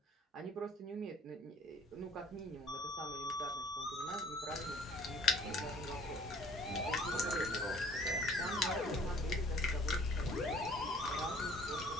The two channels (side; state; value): both; normal; correlation 0.54